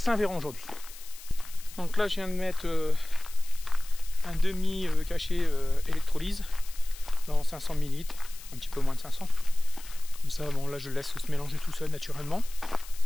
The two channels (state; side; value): noise; left; hiss, 17 dB below the sound